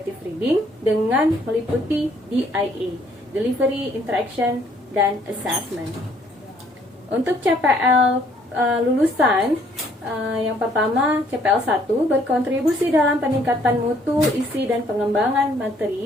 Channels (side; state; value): both; normal; correlation 0.64